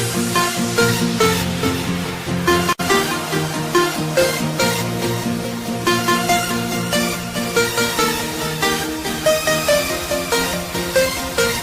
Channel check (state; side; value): identical; both; correlation 1.00